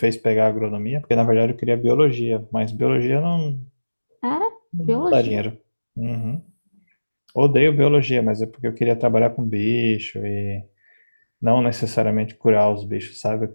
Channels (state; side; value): inverted; both; correlation -1.00